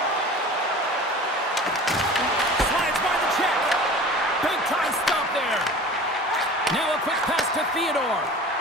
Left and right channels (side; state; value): both; normal; correlation 0.40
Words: Slides by the check. Big time stop there. Now a quick pass to Theodore.